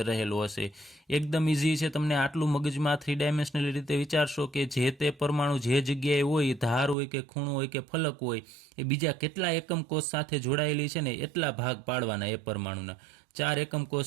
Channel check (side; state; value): left; drops out; at 7.0 s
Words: રહેલો હશે. એકદમ ઇઝી છે. તમને આટલું મગજમાં 3 ડાયમેન્શનલ રીતે વિચારશો કે જે તે પરમાણુ જે જગ્યાએ હોય, ધાર હોય કે ખૂણો હોય કે ફલક હોય, એ બીજા કેટલા એકમ કોષ સાથે જોડાયેલી છે ને એટલા ભાગ પાડવાના એ પરમાણુના. 4 એકમ કોષ